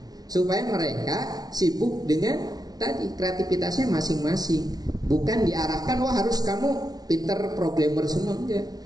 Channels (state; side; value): late; left; 0.19 ms